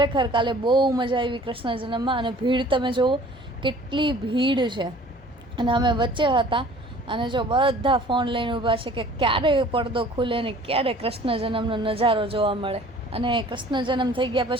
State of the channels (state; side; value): normal; both; correlation 0.50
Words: કાલે બહુ મજા આવી કૃષ્ણ જન્મમાં. અને ભીડ તમે જુઓ કેટલી ભીડ છે. અને અમે વચ્ચે હતા અને જો બધા ફોન લઈને ઊભા છે કે ક્યારે પડદો ખુલે ને ક્યારે કૃષ્ણ જન્મનો નજારો જોવા મળે. અને કૃષ્ણ જન્મ થઈ ગયા